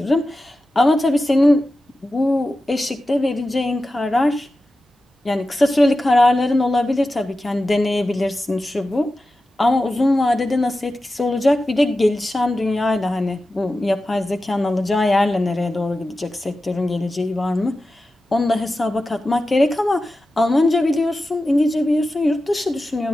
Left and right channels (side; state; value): both; normal; correlation 0.93